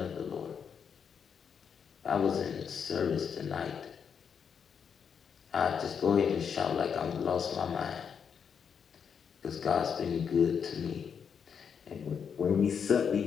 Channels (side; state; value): right; quieter; 7.0 dB